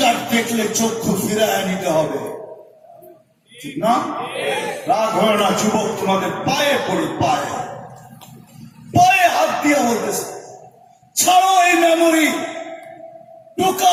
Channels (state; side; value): identical; both; correlation 1.00